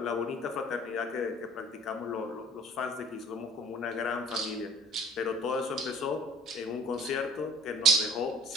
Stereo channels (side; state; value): both; normal; correlation 0.49